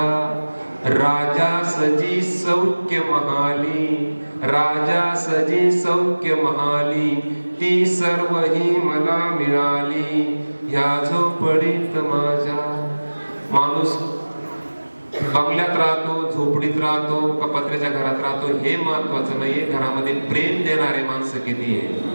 राजा सजी सौख्य महाली, राजा सजी सौख्य महाली, ती सर्व ही मला मिळाली ह्या झोपडीत माझ्या. माणूस बंगल्यात राहतो, झोपडीत राहतो का पत्र्याच्या घरात राहतो हे महत्वाचं नाहीये, घरामध्ये प्रेम देणारे माणसं किती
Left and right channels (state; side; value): inverted; both; correlation -1.00